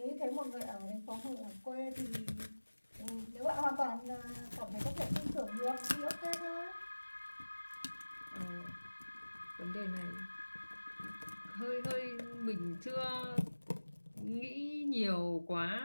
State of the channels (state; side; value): inverted; both; correlation -1.00